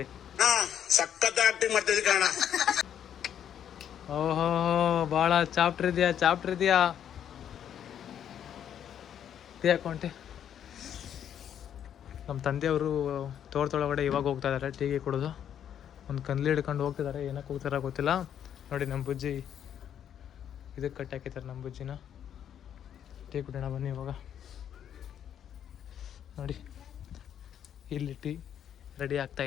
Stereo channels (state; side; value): quieter; right; 9.5 dB